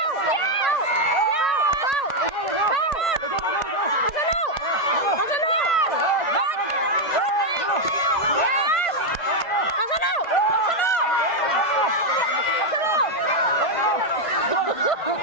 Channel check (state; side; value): late; right; 1.5 ms